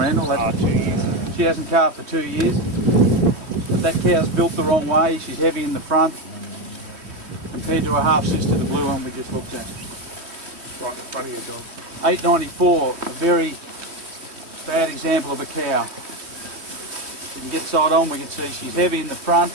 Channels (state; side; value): late; left; 3.2 ms